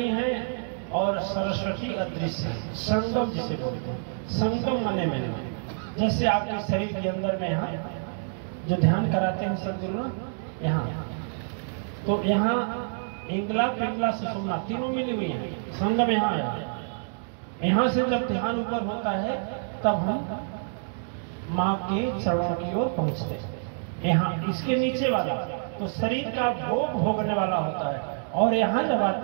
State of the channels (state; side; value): silent; left; digital silence